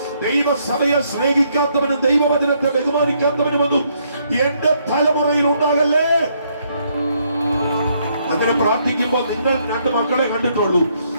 ദൈവസഭയെ സ്നേഹിക്കാത്തവനും ദൈവവചനത്തെ ബഹുമാനിക്കാത്തവനുമൊന്നും എന്റെ തലമുറയിൽ ഉണ്ടാകല്ലേ. അങ്ങനെ പ്രാർത്ഥിക്കുമ്പോൾ നിങ്ങൾ 2 മക്കളെ കണ്ടിട്ടുള്ളൂ,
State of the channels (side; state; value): both; inverted; correlation -0.72